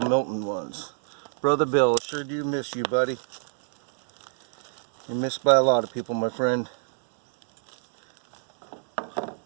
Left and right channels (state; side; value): silent; left; digital silence